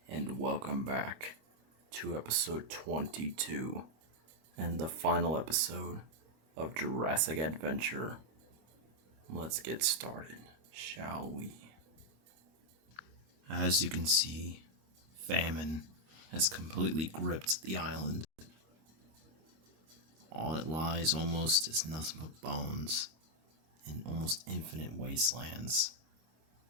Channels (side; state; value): left; late; 25 ms